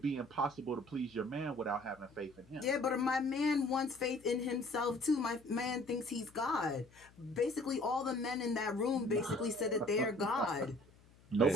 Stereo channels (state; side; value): noise; left; hum, 27 dB below the sound